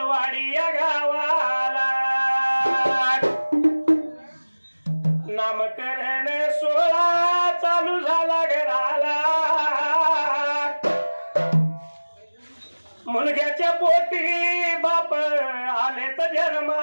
या गावाला नामकरण सोहळा चालू झाला घराला मुलग्याच्या पोटी बाप आले तर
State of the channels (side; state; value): both; inverted; correlation -1.00